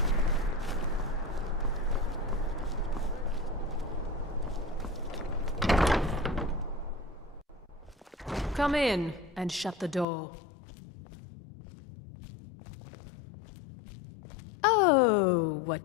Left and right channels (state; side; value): drops out; right; at 10.1 s